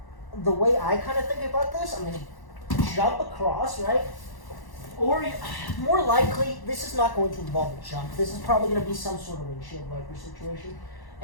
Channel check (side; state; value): right; late; 1.1 ms